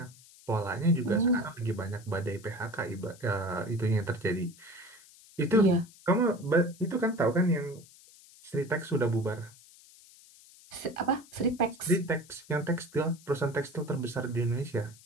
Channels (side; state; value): left; noise; hiss, 23 dB below the sound